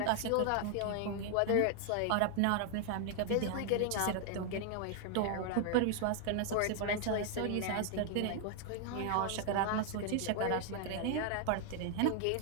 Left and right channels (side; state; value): both; different; correlation 0.00